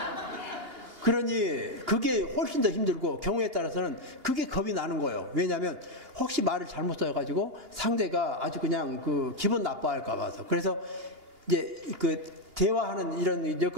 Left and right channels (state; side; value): late; left; 2.8 ms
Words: 그러니 그게 훨씬 더 힘들고 경우에 따라서는 그게 겁이 나는 거예요. 왜냐하면 혹시 말을 잘못 써가지고 상대가 아주 그냥 그 기분 나빠할까 봐서. 그래서 이제 그 대화하는 이런